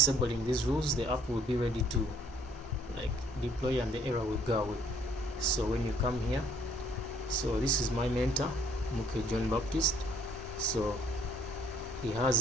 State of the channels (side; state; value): both; normal; correlation 0.61